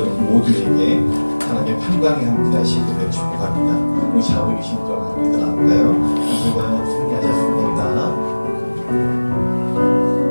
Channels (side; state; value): both; inverted; correlation -1.00